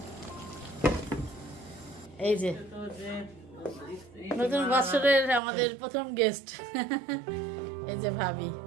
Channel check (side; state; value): left; drops out; at 5.4 s